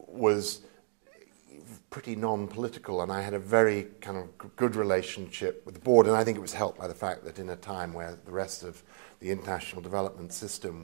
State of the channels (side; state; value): left; silent; digital silence